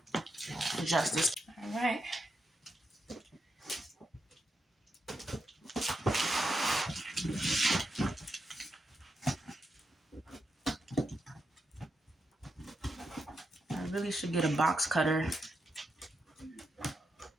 adjust this. All right. I really should get a box cutter.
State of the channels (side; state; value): both; normal; correlation 0.84